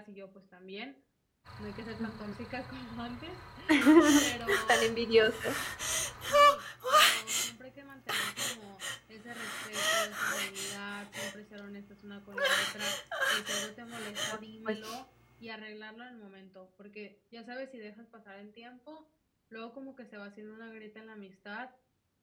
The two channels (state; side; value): identical; both; correlation 1.00